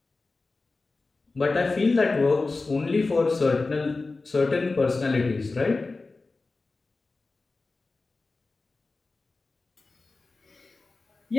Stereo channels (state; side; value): quieter; right; 3.6 dB